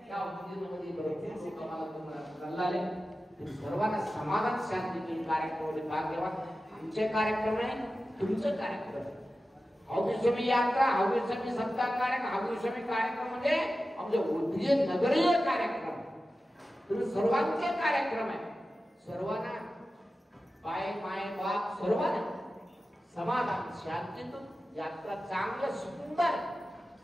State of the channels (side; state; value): both; normal; correlation 0.94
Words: या उद्योगामध्ये भरपूर लोक आम्हाला तुम्हाला कळले. सर्वांना समाधान शांती कार्यक्रम भाग्यवान. आमचे कार्यक्रम आहे, तुमचं कार्यक्रम. हौगीस्वामी यात्रा, हौगीस्वामी सप्ताह कार्यक्रम, हौगीस्वामी कार्यक्रम म्हणजे आमचे उद्योग नगरीय कार्यक्रम. तुम्ही सर्वांचे कार्यक्रम आहे. सर्वांना बाय माय बाप सर्वांना समाधान शांतीतून यात्रा चांगलं सुंदर.